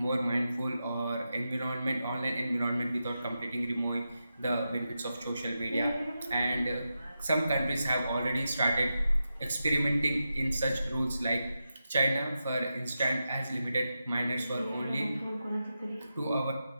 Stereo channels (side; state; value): both; inverted; correlation -0.89